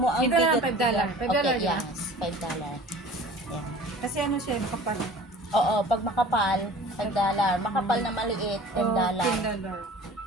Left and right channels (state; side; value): normal; both; correlation 0.44